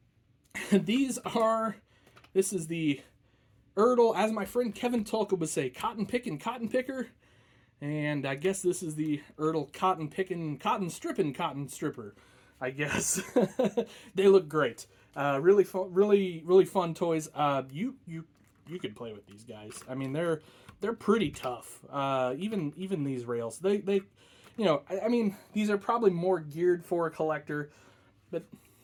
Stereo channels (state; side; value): identical; both; correlation 1.00